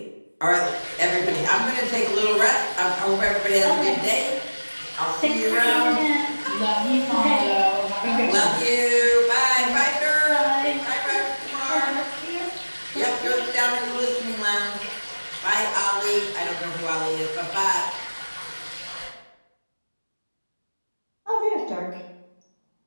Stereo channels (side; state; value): both; inverted; correlation -1.00